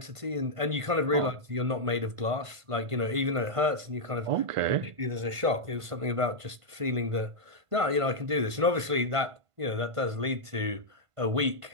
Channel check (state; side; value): late; left; 1.5 ms